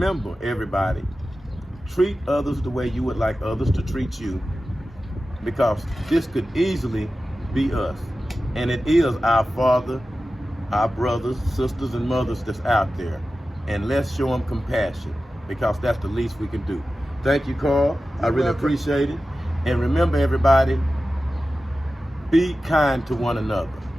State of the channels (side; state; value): both; normal; correlation 0.94